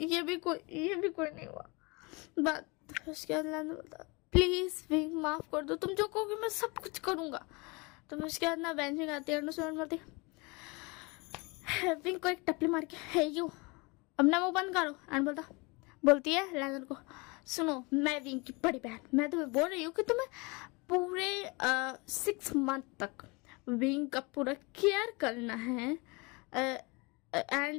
ये भी कोई नहीं हुआ बात। फिर उसके बाद लैंडन बोलता प्लीज़ विंग माफ़ कर दो, तुम जो कहोगे मैं सब कुछ करूँगा। तो फिर उसके बाद ना बेंचिंग आती है और बोलती विंग को एक टपली मार के है यू अपना मुँह बंद करो। एंड बोलती है लैंडन को सुनो मैं विंग की बड़ी बहन, मैं तुम्हें बोल रही हूँ कि तुम्हें पूरे 6 मंथ तक विंग का पूरा केयर करना है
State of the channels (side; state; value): right; quieter; 27.6 dB